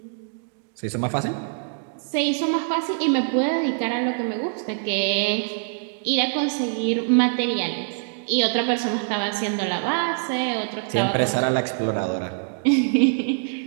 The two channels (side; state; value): left; silent; digital silence